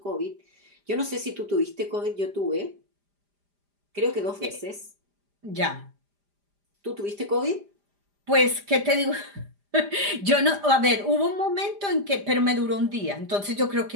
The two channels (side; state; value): left; late; 5.0 ms